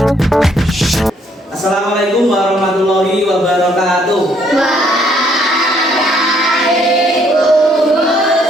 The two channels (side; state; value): both; normal; correlation 0.67